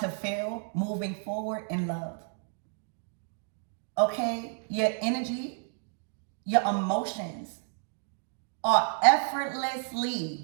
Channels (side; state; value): left; silent; 57 dB below the other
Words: feel moving forward in love. Okay? Your energy, your emotions are